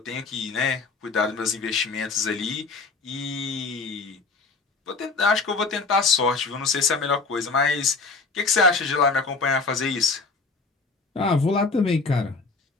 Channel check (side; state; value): right; quieter; 4.2 dB